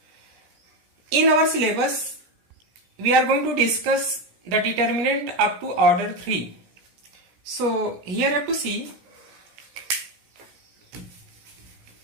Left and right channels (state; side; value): late; left; 17 ms